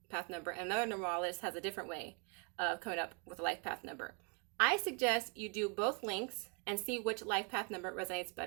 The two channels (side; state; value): left; quieter; 33.8 dB